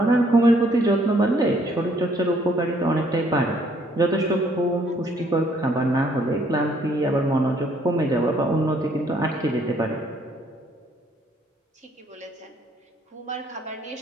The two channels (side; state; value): both; normal; correlation 0.65